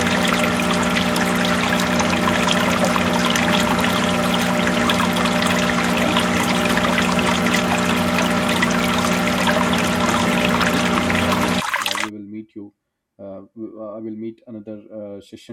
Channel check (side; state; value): both; identical; correlation 1.00